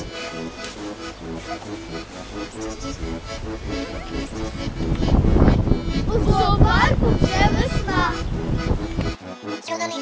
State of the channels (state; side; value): identical; both; correlation 1.00